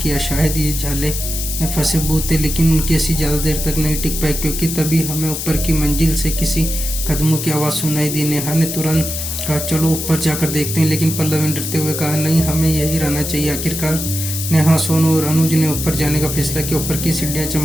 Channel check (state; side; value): noise; left; hiss, 5 dB below the sound